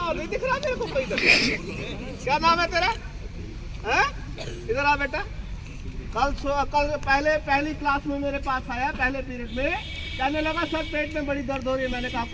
नहीं दिख रहा मेरे को कोई इधर। क्या नाम है तेरा? हैं? इधर आ बेटा। कल पहली क्लास में मेरे पास आया, पहले पीरियड में, कहने लगा सर पेट में बड़ी दर्द हो रही है। मैंने कहा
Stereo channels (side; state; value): both; identical; correlation 1.00